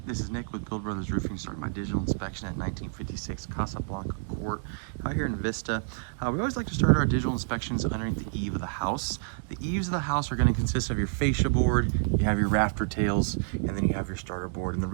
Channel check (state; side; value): silent; left; digital silence